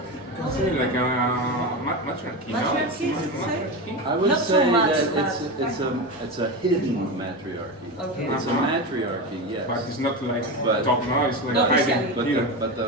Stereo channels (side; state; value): both; normal; correlation 0.20